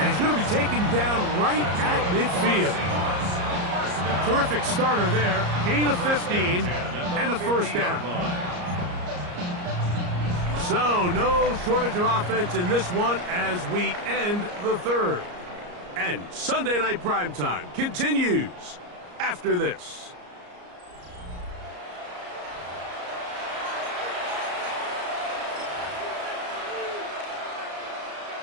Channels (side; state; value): left; late; 34 ms